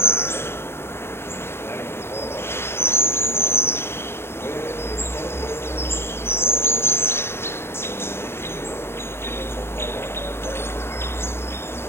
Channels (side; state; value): right; late; 0.12 ms